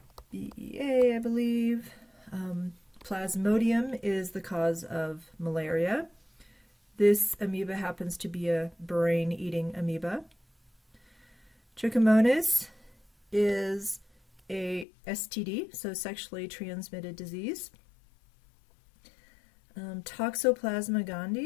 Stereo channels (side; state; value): right; drops out; at 14.9 s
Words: I believe. Plasmodium is the cause of malaria. This amoeba happens to be a brain-eating amoeba. Trichomonas is a STD, so sexually transmitted disease. Toxoplasma